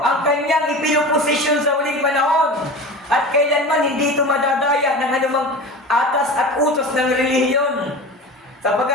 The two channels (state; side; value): normal; both; correlation 0.32